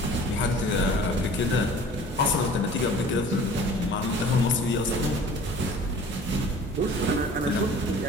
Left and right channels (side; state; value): both; normal; correlation 0.45